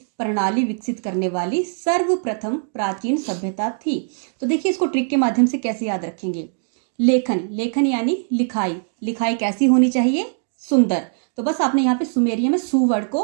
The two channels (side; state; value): left; silent; digital silence